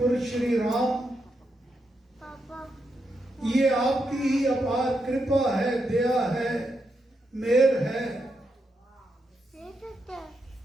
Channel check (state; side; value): normal; both; correlation 0.83